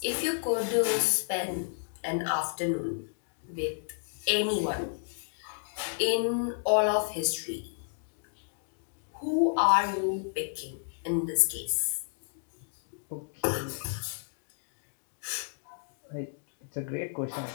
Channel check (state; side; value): silent; right; digital silence